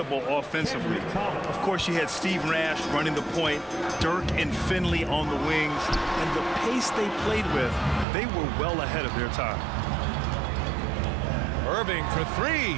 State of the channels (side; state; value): left; drops out; at 8.1 s